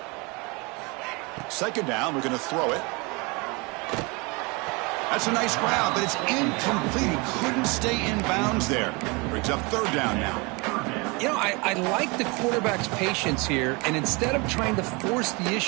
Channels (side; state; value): left; quieter; 27.9 dB